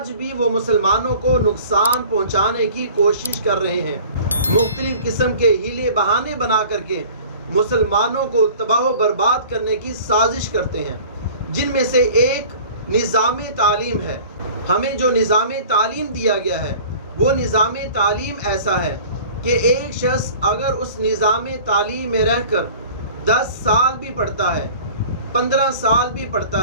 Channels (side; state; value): both; inverted; correlation -0.45